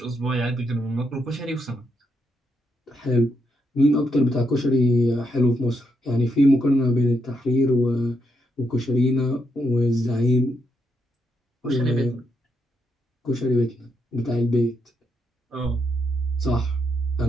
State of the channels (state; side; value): normal; both; correlation 0.79